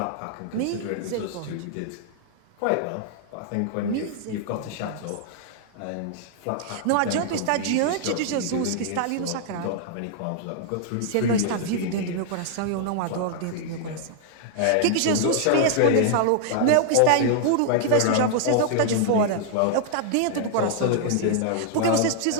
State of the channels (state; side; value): different; both; correlation -0.01